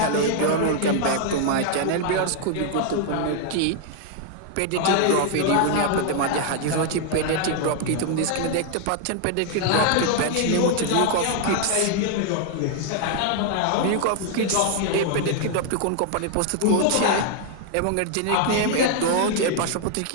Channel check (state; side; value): different; both; correlation 0.00